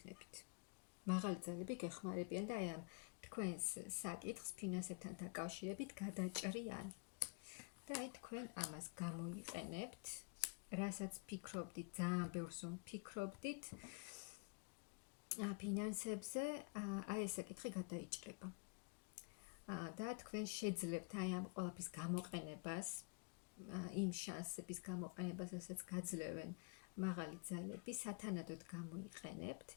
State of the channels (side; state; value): right; quieter; 34.2 dB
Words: მაღალი ძალები გეხმარებიან და აი ამ თქვენს საკითხს ფინანსებთან დაკავშირებით გადაჭრიან. და აი თქვენ ამას გამოიყენებთ, რასაც ფიქრობდით, ძალიან ბევრს ფიქრობდით ფინანსებზე, აი ეს საკითხი გადაიჭრება. და თქვენ შეძლებთ აი ამ ყველაფრის გამოყენებას, იმ შანსების გამოყენებას, რასაც გაძლევენ მაღალი ძალები, სათანადოდ გამოიყენებთ